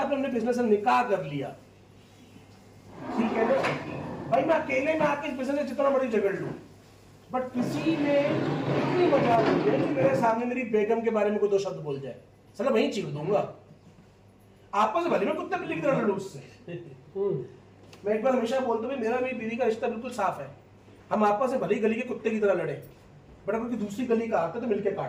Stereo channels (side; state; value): both; identical; correlation 1.00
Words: अपने बिजनेस से निकाह कर लिया, ठीक है ना, भाई मैं अकेले में आके इस बिजनेस में जितना बड़ी झगड़ लूं, बट किसी ने इतनी मजा ली है कि मेरे सामने मेरी बेगम के बारे में कोई 2 शब्द बोल जाए, चलो वहीं चीर दूंगा। आपस में भले मैं कुत्ते बिल्ली की तरह लड़ूं उससे। मैं एक बार हमेशा बोलता हूँ, मेरा मेरी बीवी का रिश्ता बिल्कुल साफ है, हम आपस में भले गली के कुत्ते की तरह लड़े, बट अगर दूसरी गली का आता है तो मिलकर